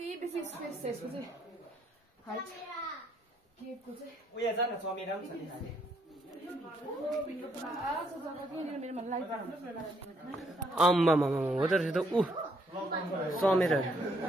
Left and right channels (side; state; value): both; normal; correlation 0.71